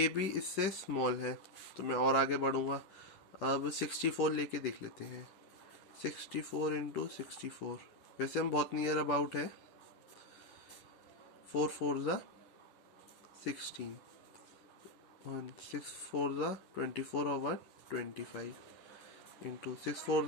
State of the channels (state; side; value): late; right; 10 ms